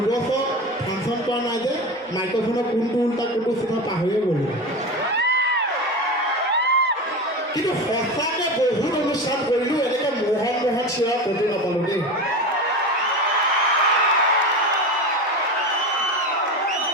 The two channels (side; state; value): both; normal; correlation 0.25